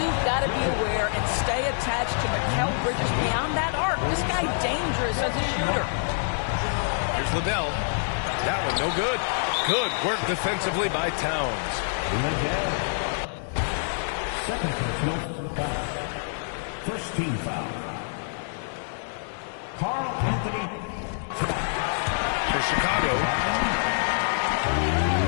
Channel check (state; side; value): silent; right; digital silence